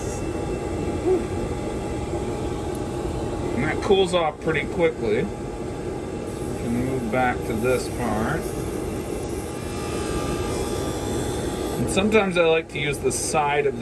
And that cools off pretty quickly. We can move back to this part. And sometimes I like to use the side of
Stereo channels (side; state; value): both; identical; correlation 1.00